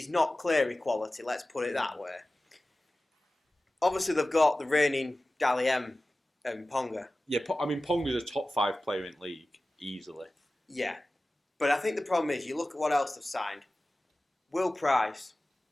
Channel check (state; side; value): normal; both; correlation 0.96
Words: not Cleary quality, let's put it that way. Obviously, they've got the reigning Dally M and Ponga. Yeah, Ponga's a top 5 player in league, easily. Yeah. But I think the problem is, you look at what else they've signed. Will Price.